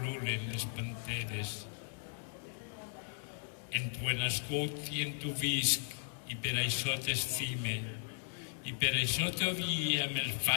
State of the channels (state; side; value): silent; right; digital silence